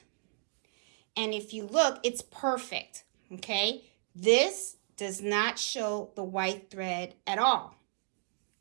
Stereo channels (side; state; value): left; silent; digital silence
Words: And if you look, it's perfect, okay? This does not show the white thread at all,